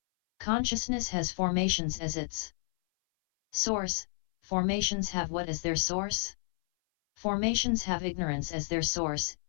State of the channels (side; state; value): right; silent; 57 dB below the other